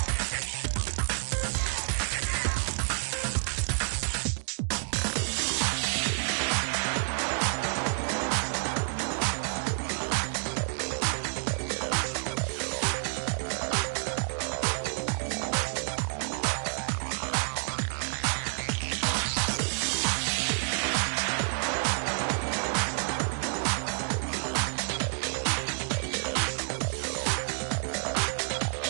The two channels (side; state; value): left; silent; 58 dB below the other